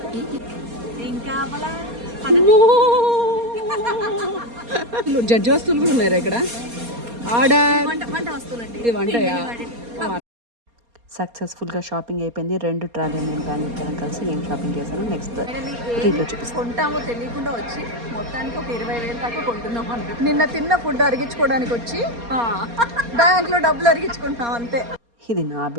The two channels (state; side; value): late; left; 4.3 ms